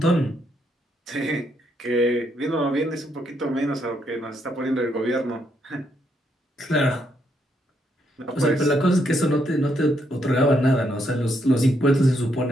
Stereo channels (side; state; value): both; normal; correlation 0.76